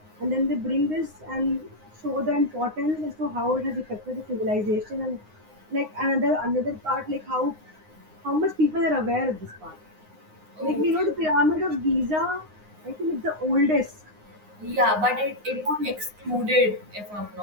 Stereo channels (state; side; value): late; left; 9.6 ms